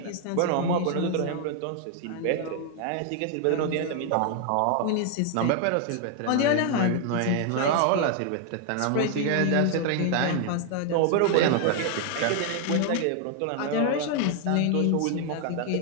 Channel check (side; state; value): both; different; correlation 0.00